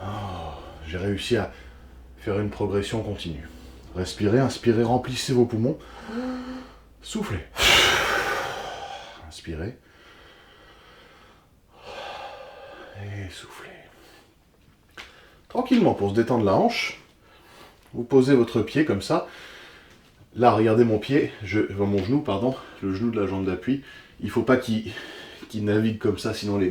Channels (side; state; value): both; identical; correlation 1.00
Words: j'ai réussi à faire une progression continue. Respirez, inspirez, remplissez vos poumons. Soufflez. Inspirez. Et soufflez. Tranquillement, pour se détendre la hanche, vous posez votre pied comme ça. Là, regardez mon pied, mon genou, pardon, le genou de la jambe d'appui. Il ne faut pas qu'il navigue comme ça, sinon